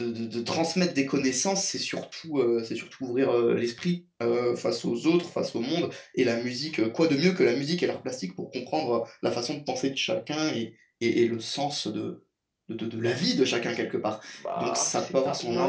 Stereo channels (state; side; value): identical; both; correlation 1.00